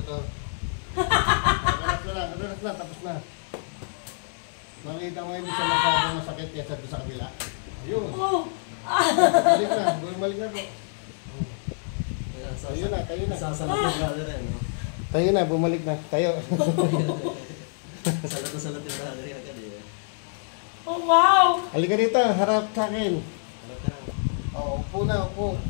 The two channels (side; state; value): right; silent; digital silence